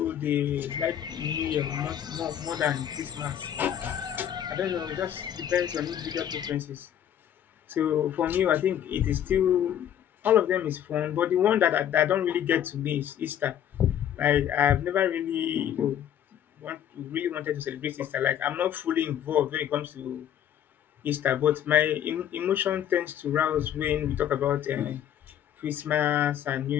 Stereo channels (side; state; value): right; quieter; 10.2 dB